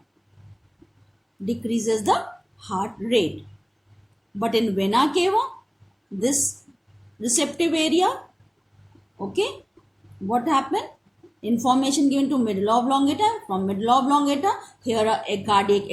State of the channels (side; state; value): both; identical; correlation 1.00